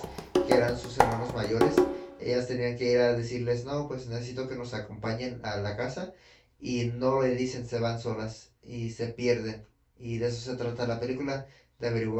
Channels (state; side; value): identical; both; correlation 1.00